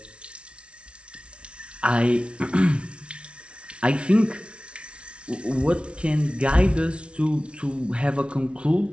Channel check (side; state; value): left; late; 0.059 ms